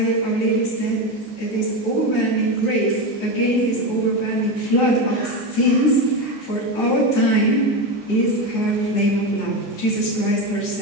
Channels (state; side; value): late; right; 15 ms